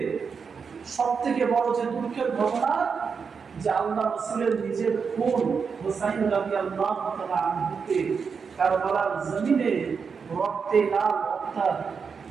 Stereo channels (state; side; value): quieter; left; 5.8 dB